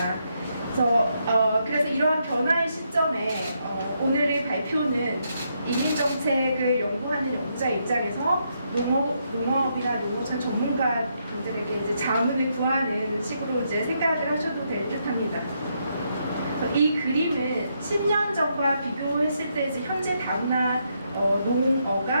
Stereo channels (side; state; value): both; inverted; correlation -0.78